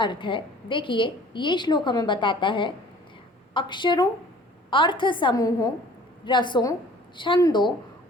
है देखिए। ये श्लोक हमें बताता है अक्षरों, अर्थ समूहों, रसों, छंदों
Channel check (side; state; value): both; normal; correlation 0.50